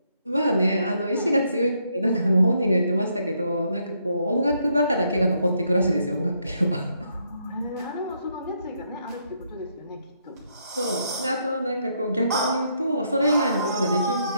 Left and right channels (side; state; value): both; inverted; correlation -0.75